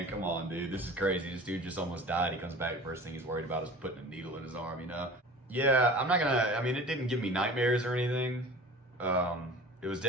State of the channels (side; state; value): both; normal; correlation 0.40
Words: come on, dude. This is crazy. This dude just almost died. He comes back, first thing he's worried about is putting a needle in his arm, you know? Yeah, I'm not gonna, I mean, it didn't give me nightmares or anything. It was